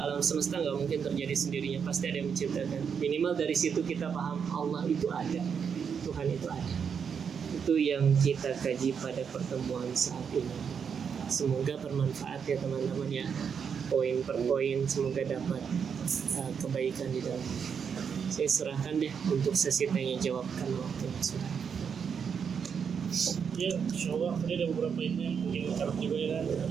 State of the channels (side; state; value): left; quieter; 6.9 dB